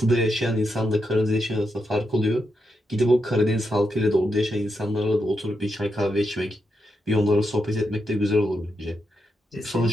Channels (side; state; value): both; normal; correlation 0.84